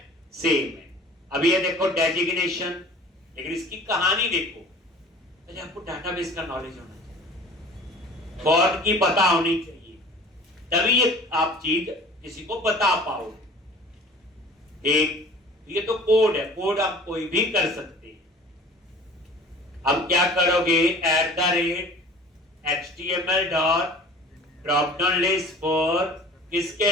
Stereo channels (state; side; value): normal; both; correlation 0.45